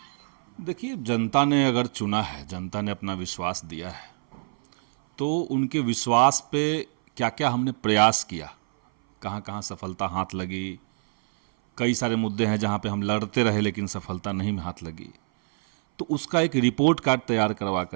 देखिए, जनता ने अगर चुना है, जनता ने अपना विश्वास दिया है, तो उनके विश्वास पे क्या क्या हमने प्रयास किया, कहाँ कहाँ सफलता हाथ लगी। कई सारे मुद्दे हैं जहाँ पे हम लड़ते रहे लेकिन सफलता नहीं हाथ लगी। तो उसका एक रिपोर्ट कार्ड तैयार करवा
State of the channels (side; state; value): left; silent; 58 dB below the other